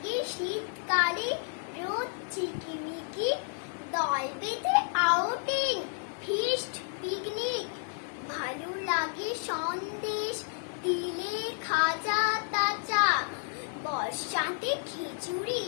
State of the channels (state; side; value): silent; right; 57 dB below the other